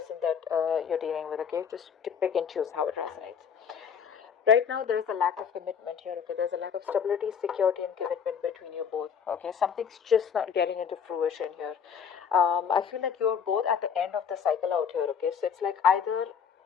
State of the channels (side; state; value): right; quieter; 7.2 dB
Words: that you're dealing with. Okay, just pick and choose how it resonates. Right now, there is a lack of commitment here. Okay, there's a lack of stability, security, and commitment between you both. Okay, something's just not getting into fruition here. I feel like you're both at the end of the cycle out here. Okay, so it's like either